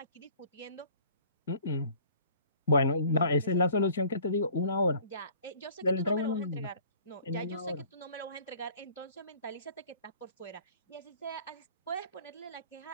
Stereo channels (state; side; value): inverted; both; correlation -0.51